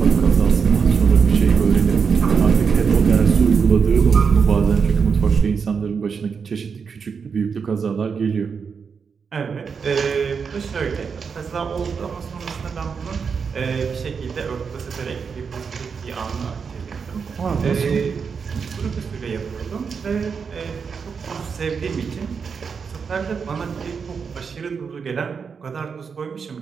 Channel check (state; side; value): quieter; left; 5.9 dB